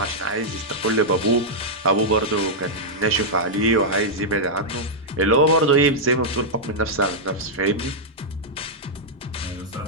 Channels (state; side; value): normal; both; correlation -0.07